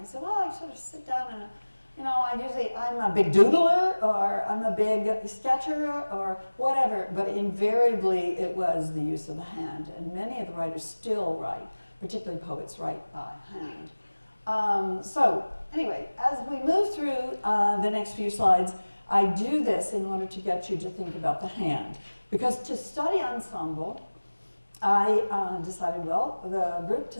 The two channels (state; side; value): inverted; both; correlation -1.00